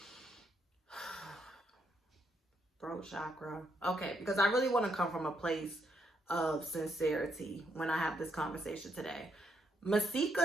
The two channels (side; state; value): both; normal; correlation 0.76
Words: throat chakra. Okay, because I really want to come from a place of sincerity when I have this conversation today.